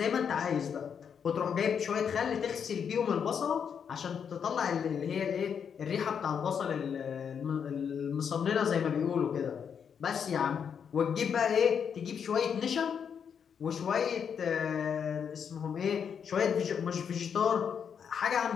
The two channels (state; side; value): quieter; right; 7.3 dB